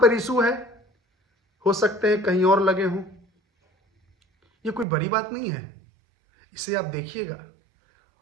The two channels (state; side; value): drops out; left; at 4.9 s